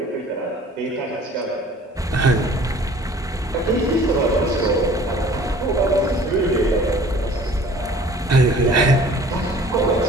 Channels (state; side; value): normal; both; correlation 0.50